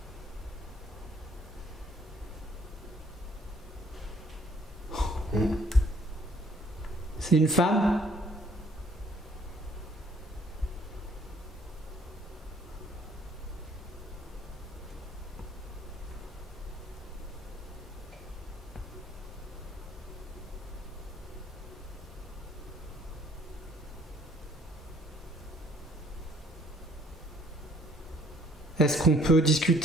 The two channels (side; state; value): both; normal; correlation 0.61